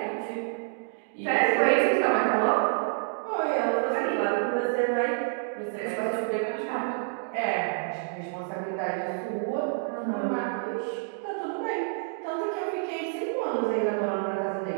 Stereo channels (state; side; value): silent; left; digital silence